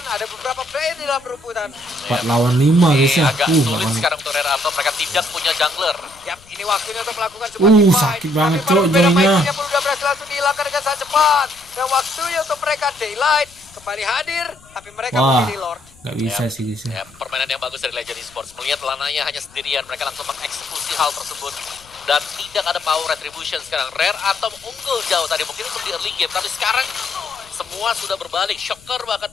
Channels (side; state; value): left; noise; rumble, 26 dB below the sound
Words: ada beberapa player di dalam perebutan. 4 lawan 5 guys ya. Agak sulit Bahkan- sekarang untuk Rare Atom. Mereka tidak punya jungler. Yap, ini waktunya untuk melakukan sebuah team fight. sakit banget, Tapi Cok, berbeda joinnya. Mikey-nya pun udah berhasil langsung dihilangkan dengan sangat cepat. Dan waktunya untuk mereka Daylight kembali hadir, tapi mereka Wah, memilih Lord. gak bisa sih guys ya. Ya, permainan yang bagus dari Legend Esports. Melihat Lanaya hanya sendirian, mereka langsung mengeksekusi hal tersebut. Dan tidak ada power retribution sekarang. Rare Atom unggul jauh tadi mungkin untuk di early game. Tapi sekarang semua sudah berbalik. Shocker bahkan